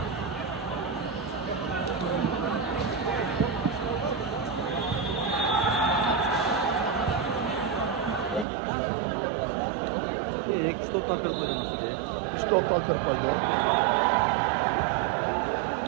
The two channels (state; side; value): drops out; left; at 8.5 s